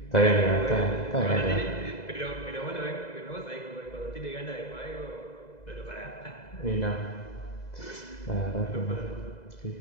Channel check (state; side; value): late; right; 2.0 ms